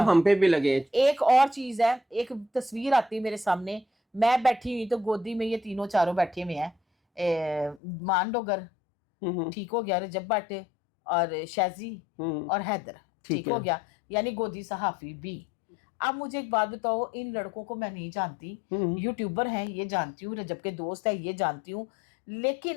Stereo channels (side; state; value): right; drops out; at 7.8 s